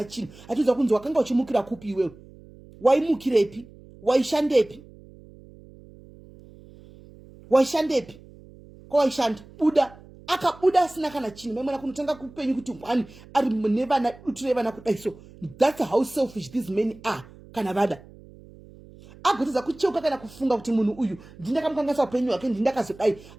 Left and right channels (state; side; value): noise; right; hum, 21 dB below the sound